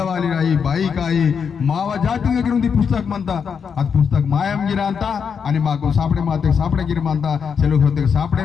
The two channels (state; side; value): quieter; right; 6.6 dB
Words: వాలి రాయి బాయి కాయి మావ జాతి దగ్గర ఉంది పుస్తకం అంతా అది పుస్తక మాయం గిరా అంతా అని మాకు సాపడే మాతే సాపడే గిరి అంతా సెలవు ಹೊತ್ತಿಗೆ